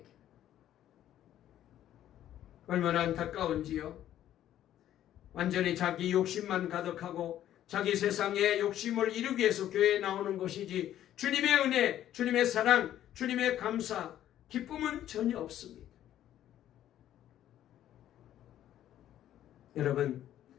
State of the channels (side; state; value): right; quieter; 11.9 dB